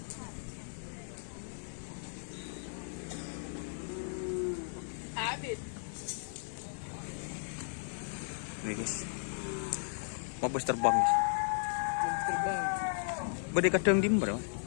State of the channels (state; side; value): silent; right; 54 dB below the other